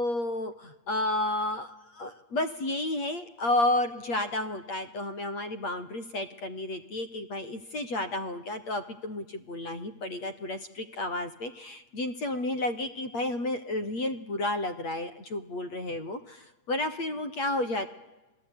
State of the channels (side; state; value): right; late; 8.5 ms